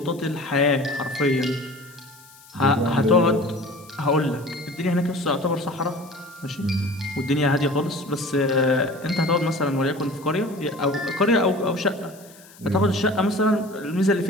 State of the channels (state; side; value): noise; left; hiss, 23 dB below the sound